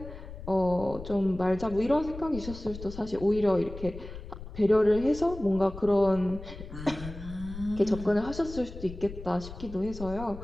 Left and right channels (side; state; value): left; noise; rumble, 12 dB below the sound